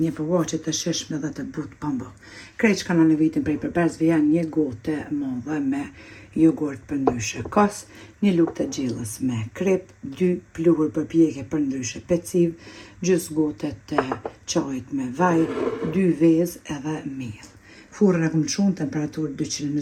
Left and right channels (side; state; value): both; identical; correlation 1.00